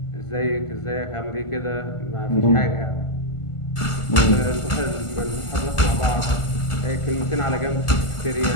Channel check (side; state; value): right; late; 1.5 ms